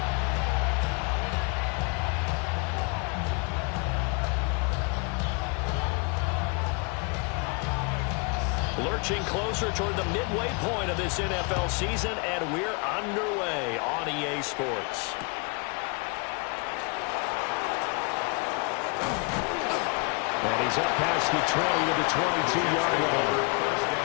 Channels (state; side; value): quieter; right; 32.9 dB